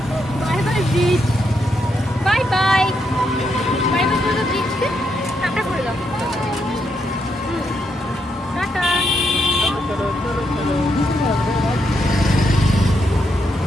bye bridge, bye bye bye bye করে ব্রিজকে tata করে দাও। টাটা।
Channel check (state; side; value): normal; both; correlation 0.80